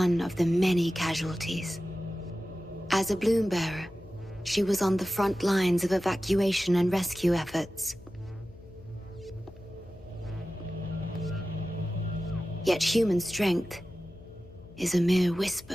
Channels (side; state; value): left; noise; hum, 21 dB below the sound